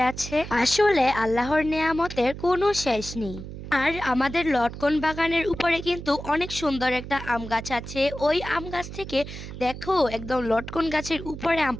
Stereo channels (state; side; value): noise; right; hum, 11 dB below the sound